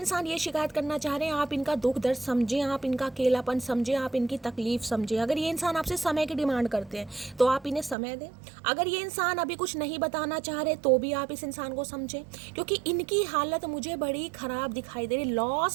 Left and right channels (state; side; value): drops out; left; at 8.0 s